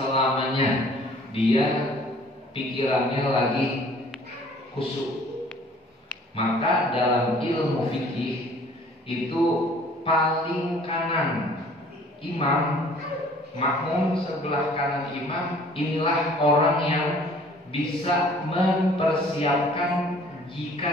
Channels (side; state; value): both; normal; correlation 0.53